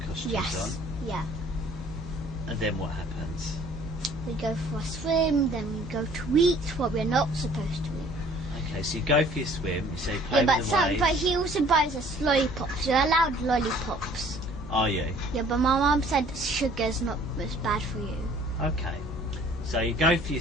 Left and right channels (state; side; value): normal; both; correlation 0.55